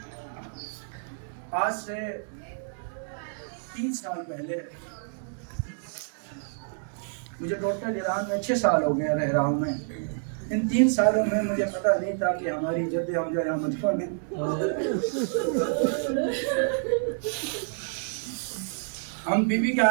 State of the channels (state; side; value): silent; left; digital silence